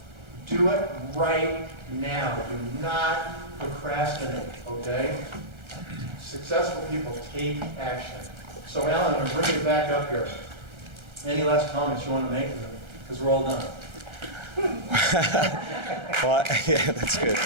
Do it right now. Do not procrastinate, okay? Successful people take action. So Alan, I'm going to bring you back up here. Any last comments you want to make? Because we're all done. Well, yeah, that's good.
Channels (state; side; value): late; left; 1.3 ms